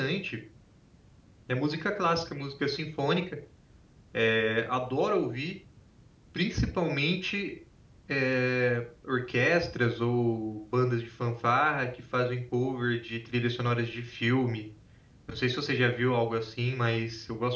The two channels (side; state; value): both; identical; correlation 1.00